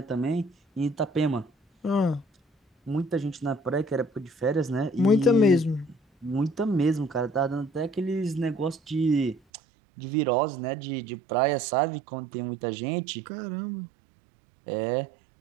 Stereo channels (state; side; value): drops out; left; at 9.4 s